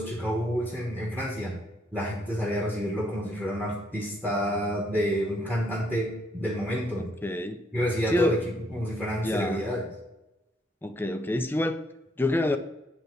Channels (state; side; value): normal; both; correlation 0.72